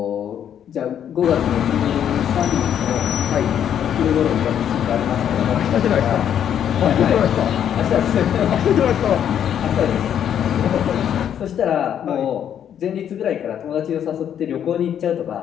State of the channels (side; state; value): right; quieter; 9.4 dB